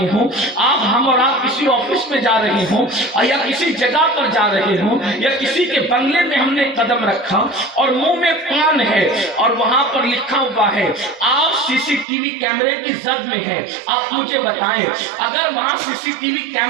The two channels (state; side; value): drops out; left; at 12.1 s